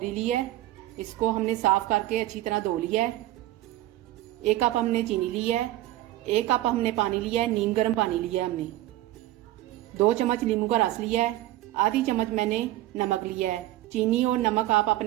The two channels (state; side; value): quieter; left; 15.7 dB